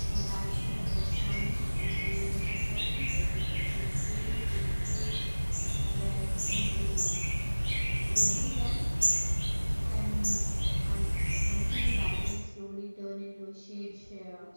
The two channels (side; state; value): both; inverted; correlation -1.00